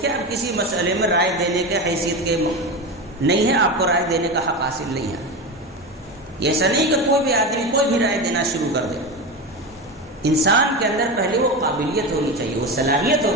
کے آپ کسی مسئلے میں رائے دینے کے حیثیت کے نہیں ہے، آپ کو رائے دینے کا حق حاصل نہیں ہے۔ یہ ایسا نہیں کہ کوئی بھی آدمی کوئی بھی رائے دینا شروع کر دے. انسان کے اندر پہلے وہ قابلیت ہونی چاہیے، وہ صلاحیت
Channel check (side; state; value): both; normal; correlation 0.21